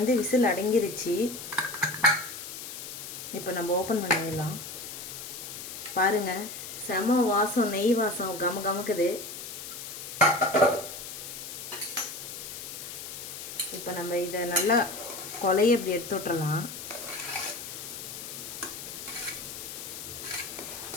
விசில் அடங்கிருச்சு. இப்போ நம்ம ஓப்பன் பண்ணிடலாம். பாருங்கள், செம வாசம், நெய் வாசம் கம கமக்குது. இப்போ நம்ம இதை நல்லா கொலையை இப்படி எடுத்து விட்டுறலாம்.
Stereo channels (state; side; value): noise; left; hiss, 9 dB below the sound